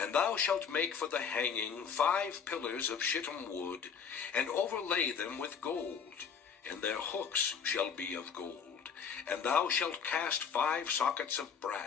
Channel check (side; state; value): right; quieter; 6.8 dB